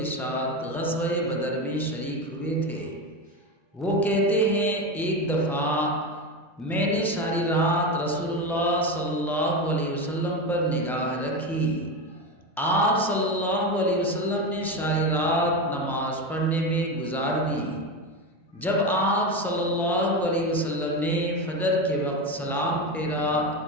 ساتھ غزوہ بدر میں شریک ہوئے تھے۔ وہ کہتے ہیں، ایک دفعہ میں نے ساری رات رسول اللہ صلی اللہ علیہ وسلم پر نگاہ رکھی۔ آپ صلی اللہ علیہ وسلم نے ساری رات نماز پڑھنے میں گزار دی۔ جب آپ صلی اللہ علیہ وسلم نے فجر کے وقت سلام پھیرا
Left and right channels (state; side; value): normal; both; correlation 0.18